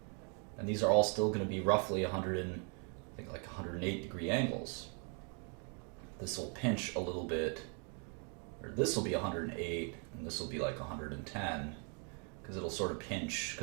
And these are all still going to be roughly 108 degree angles. This will pinch a little bit, or this will be 108, and this will be like 110, because it'll sort of pinch,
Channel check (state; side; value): quieter; left; 38.3 dB